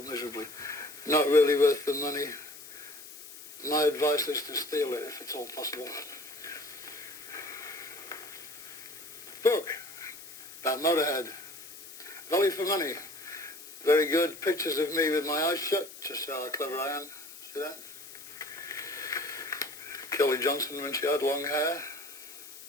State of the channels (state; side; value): noise; left; hiss, 15 dB below the sound